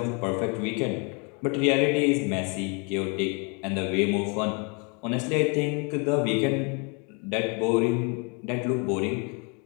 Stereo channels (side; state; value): right; quieter; 33.9 dB